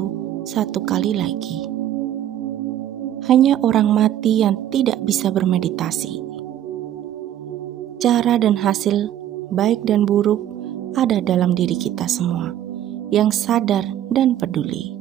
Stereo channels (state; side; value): quieter; left; 11.5 dB